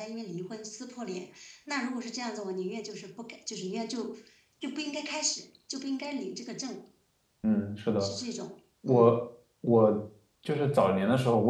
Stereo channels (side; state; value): both; identical; correlation 1.00